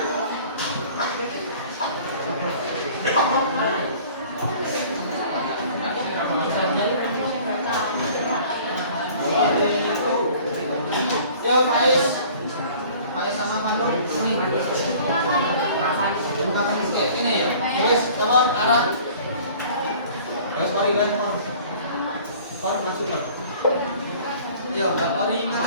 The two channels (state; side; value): inverted; both; correlation -0.49